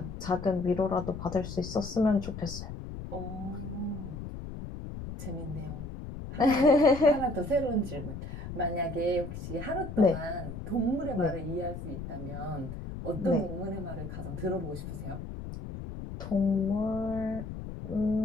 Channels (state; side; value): noise; left; rumble, 9 dB below the sound